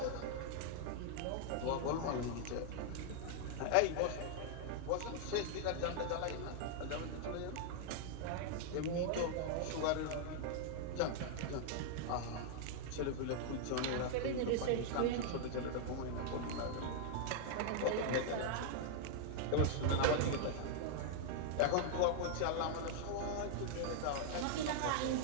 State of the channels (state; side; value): different; both; correlation 0.00